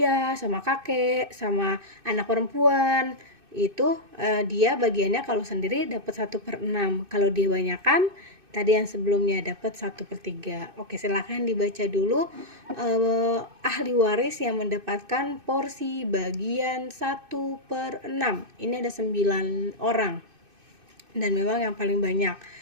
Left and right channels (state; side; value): late; left; 2.6 ms